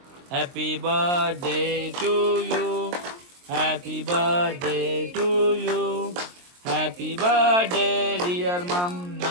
happy birthday to you. Happy birthday to you. Happy birthday dear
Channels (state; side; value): late; left; 23 ms